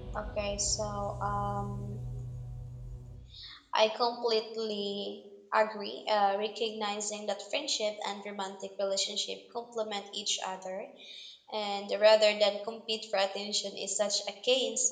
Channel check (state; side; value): identical; both; correlation 1.00